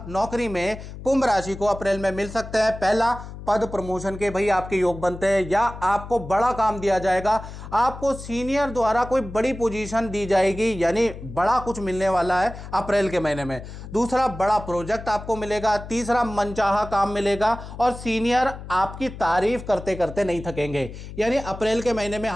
नौकरी में कुंभ राशि को अप्रैल में मिल सकते हैं। पहला, पद प्रमोशन के भाई आपके योग बनते हैं, या आपको बड़ा काम दिया जाएगा, आपको सीनियर द्वारा कोई बड़ी पोजीशन दी जाएगी, यानी बड़ा कुछ मिलने वाला है अप्रैल के महीने में। दूसरा, बड़ा प्रोजेक्ट आपको मिलेगा। तीसरा, मनचाहा काम मिलेगा, और सीनियर आपकी तारीफ करते करते नहीं थकेंगे। यानी अप्रैल के महीने में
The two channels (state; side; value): noise; left; hum, 12 dB below the sound